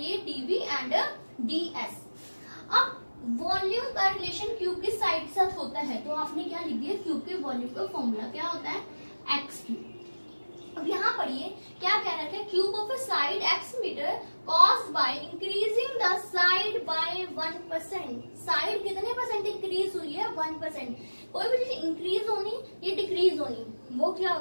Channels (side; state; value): both; inverted; correlation -1.00